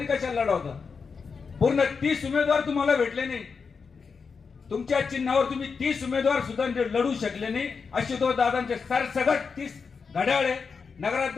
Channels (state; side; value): quieter; right; 5.4 dB